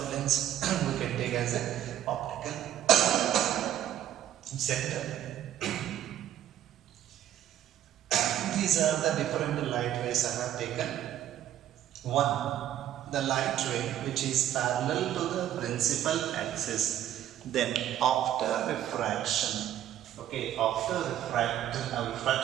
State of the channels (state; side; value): quieter; left; 11.6 dB